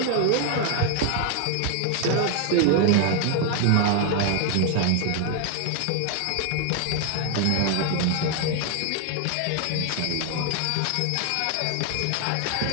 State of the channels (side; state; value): both; different; correlation 0.00